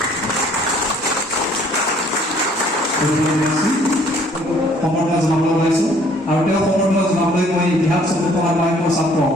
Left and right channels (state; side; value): normal; both; correlation 0.59